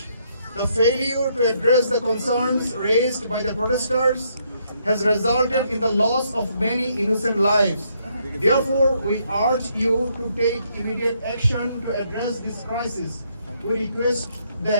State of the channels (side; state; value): both; inverted; correlation -0.73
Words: The failure to address the concerns raised by the protesters has resulted in the loss of many innocent lives. Therefore, we urge you to take immediate action to address this crisis. We request